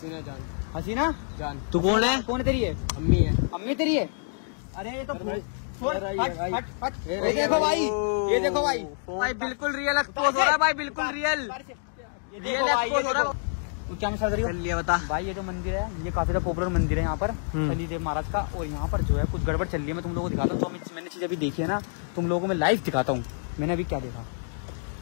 जान। हसीना जान। तू कौन है? कौन है तेरी है? अम्मी है। अम्मी तेरी है? अरे ये तो ये देखो भाई, ये देखो भाई, भाई बिल्कुल रियल एक्सपोज हो रहा है भाई, बिल्कुल रियल रियल एक्सपोज हो रहा है। तू क्या मसाल रही हो? चलिए बता। भाई ये जो मंदिर है ये काफी पॉपुलर मंदिर है यहाँ पर शनिदेव महाराज का, और यहाँ पर जो है कुछ गड़बड़ चल रही है। मैं तुम लोगों को दिखाता हूँ। तो मैंने चीज अभी देखी है ना, तुम लोगों को मैं लाइव दिखाता हूँ मैंने अभी क्या देखा।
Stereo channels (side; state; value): right; silent; digital silence